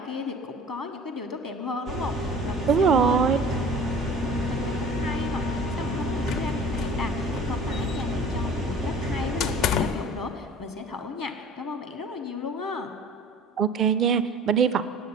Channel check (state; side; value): normal; both; correlation 0.44